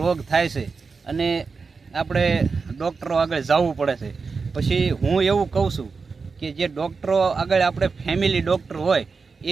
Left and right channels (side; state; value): left; quieter; 4.8 dB